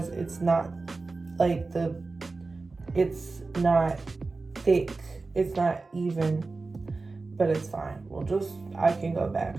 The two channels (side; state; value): left; quieter; 3.8 dB